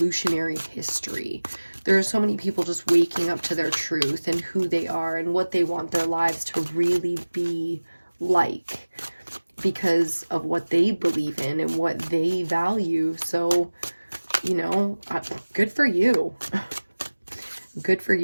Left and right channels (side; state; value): both; inverted; correlation -1.00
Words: history, there are so many people just waking up to their truth and who they are and what they want their lives to really be like, because of what they believe in and what they value. So, you know, good for you. Good for